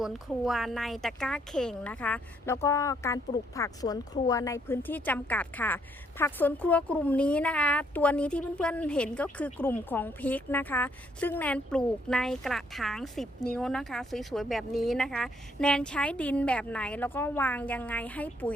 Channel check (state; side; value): normal; both; correlation 0.70